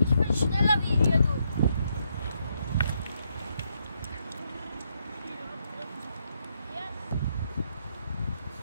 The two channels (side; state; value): both; inverted; correlation -0.77